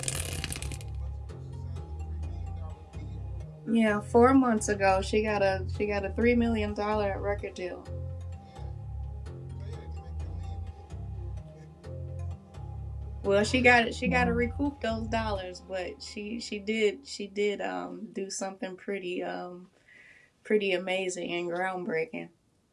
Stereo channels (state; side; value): identical; both; correlation 1.00